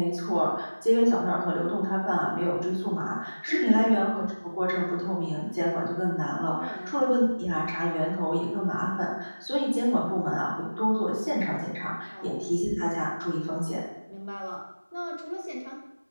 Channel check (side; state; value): both; inverted; correlation -1.00